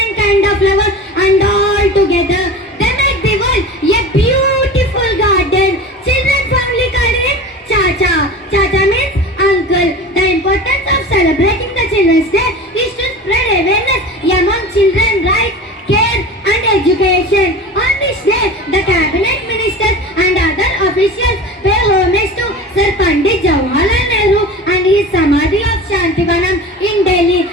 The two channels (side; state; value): both; normal; correlation 0.34